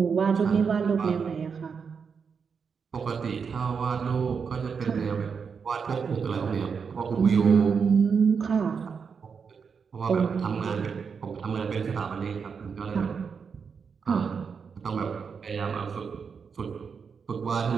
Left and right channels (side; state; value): left; quieter; 6.0 dB